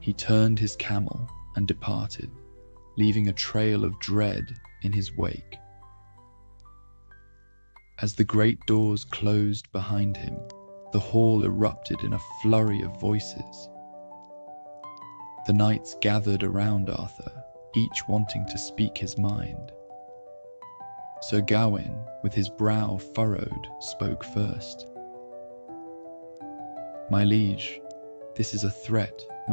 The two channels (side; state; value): both; inverted; correlation -1.00